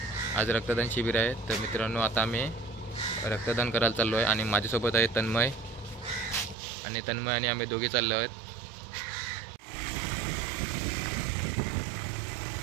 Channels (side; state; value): left; drops out; at 6.6 s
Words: आज रक्तदान शिबिर आहे। तर मित्रांनो, आता आम्ही रक्तदान करायला चाललो आहे आणि माझ्यासोबत आहे तन्मय आणि आम्ही दोघे चाललो आहोत।